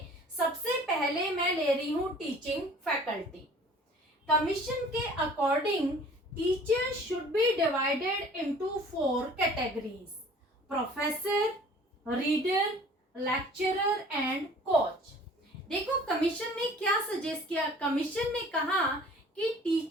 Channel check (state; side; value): normal; both; correlation 0.49